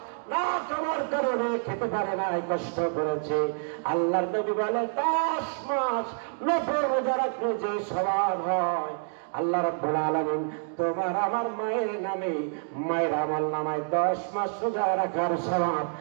না খাবার কারণে খেতে পারে না, কষ্ট করেছে। আল্লাহর নবী বলে, 10 মাস 90 রোজা রাখলে যে সওয়াব হয়, আল্লাহ রাব্বুল আলামিন তোমার আমার মায়ের নামে মায়ের আমল নামায় 10 মাস রোজা রাখার সওয়াব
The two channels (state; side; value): silent; left; digital silence